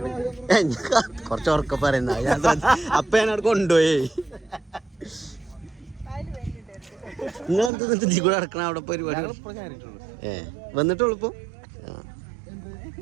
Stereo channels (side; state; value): left; drops out; at 7.7 s